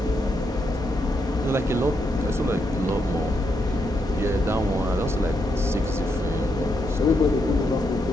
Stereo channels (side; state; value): both; normal; correlation 0.80